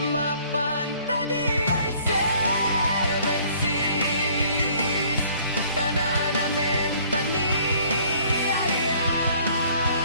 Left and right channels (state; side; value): inverted; both; correlation -0.57